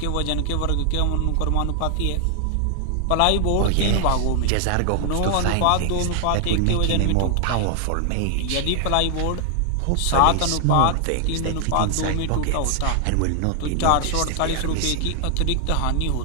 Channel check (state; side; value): different; both; correlation 0.00